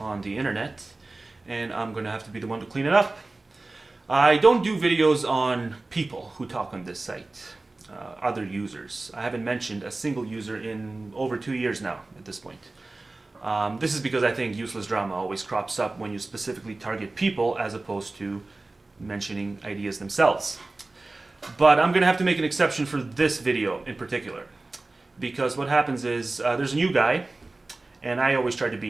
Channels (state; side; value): quieter; left; 3.2 dB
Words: the internet, and I'm going to have to be the one to clean it up. I don't do videos on people who talk on this site, other users. I haven't mentioned a single user in over 2 years now at this point. This is because I think useless drama always crops up when you specifically target people as opposed to mentioning ideas themselves. But I'm going to have to make an exception for this video in particular, because what happens is there's a new guy, and I always try to